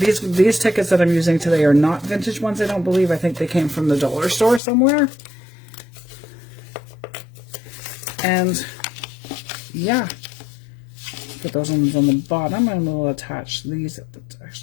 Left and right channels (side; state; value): right; drops out; at 4.6 s